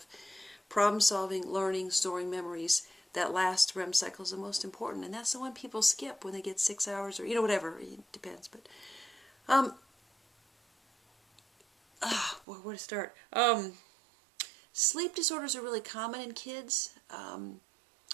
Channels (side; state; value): left; drops out; at 12.5 s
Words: problem solving, learning, storing memories. That last REM cycle is the most important. And that's the one people skip when they get 6 hours or, whatever. It depends. But, where to start? Sleep disorders are really common in kids.